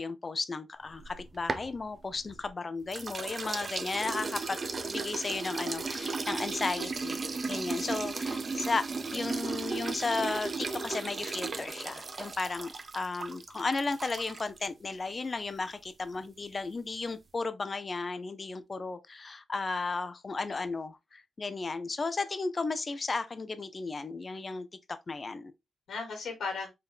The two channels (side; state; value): both; normal; correlation 0.90